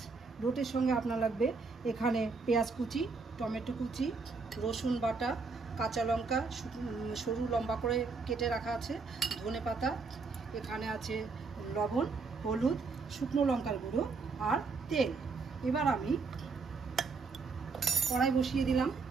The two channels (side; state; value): left; quieter; 4.4 dB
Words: লোটের সঙ্গে আপনার লাগবে এখানে পেঁয়াজ কুচি, টমেটো কুচি, রসুন বাটা, কাঁচা লঙ্কা সরু লম্বা করে কেটে রাখা আছে, ধনেপাতা, এখানে আছে লবণ, হলুদ, শুকনো লঙ্কার গুঁড়ো আর তেল। এবার আমি কড়াই বসিয়ে দিলাম।